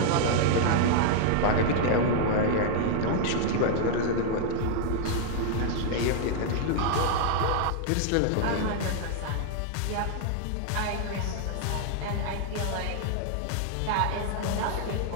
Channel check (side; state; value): both; different; correlation -0.01